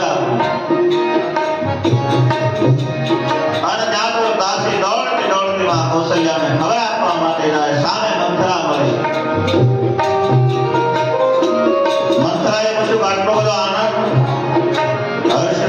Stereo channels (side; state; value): both; identical; correlation 1.00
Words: આપો. અને ત્યાં તો દાસી દોડતી દોડતી માં કૌશલ્યાને ખબર આપવા માટે જાય. સામે મંથરા મળી. મંથરાએ પૂછ્યું આટલો બધો આનંદ હર્ષ